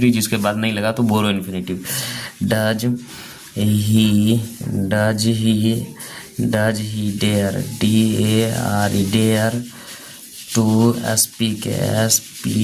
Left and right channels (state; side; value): identical; both; correlation 1.00